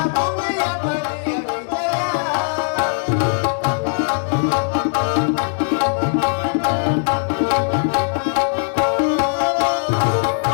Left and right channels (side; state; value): right; silent; digital silence